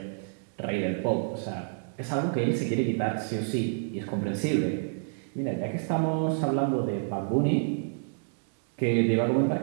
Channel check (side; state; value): left; silent; digital silence